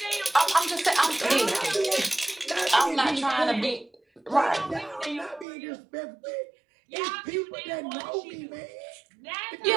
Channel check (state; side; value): drops out; left; at 5.5 s